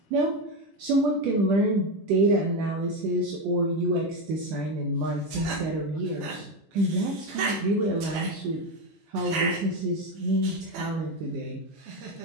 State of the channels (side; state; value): both; normal; correlation 0.12